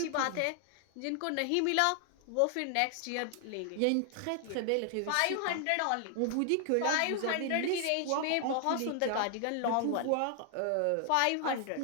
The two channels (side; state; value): both; different; correlation 0.00